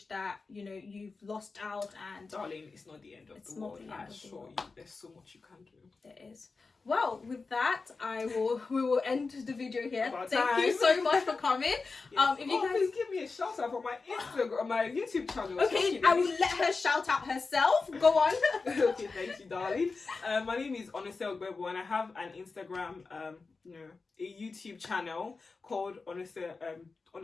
that you've lost out. And darling, it's not the end of the world. I assure you, there's so much you can do. There is. Well, with that, we will end the video here. Thank you so much for coming. Yes. If you guys please give me a shout out for my Instagram, my YouTube channel. Okay, I will let her shout out herself. Go on. Okay, thank you, darling. My name is Onose Ogbebo, and I have an Instagram, a YouTube channel called Onose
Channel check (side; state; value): right; quieter; 4.2 dB